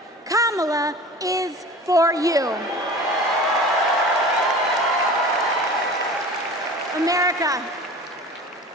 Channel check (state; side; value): normal; both; correlation 0.38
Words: Kamala is for you. America,